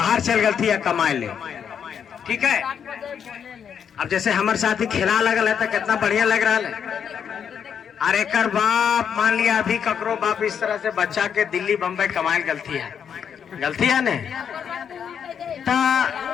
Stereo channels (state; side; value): quieter; right; 7.8 dB